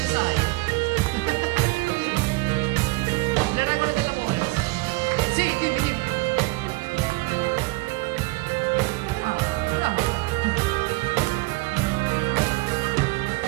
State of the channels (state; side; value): quieter; left; 23.5 dB